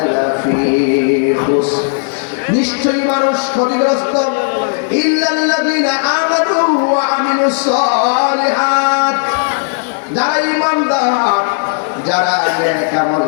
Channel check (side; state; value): right; silent; digital silence